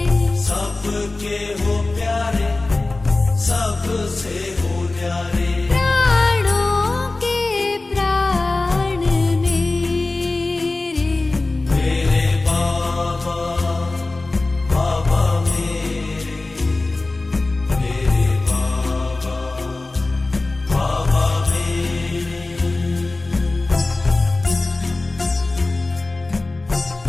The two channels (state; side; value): quieter; right; 3.2 dB